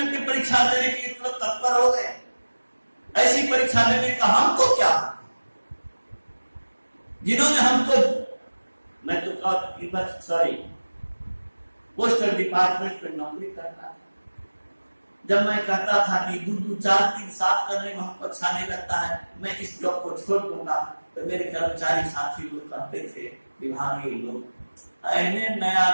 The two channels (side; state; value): both; inverted; correlation -1.00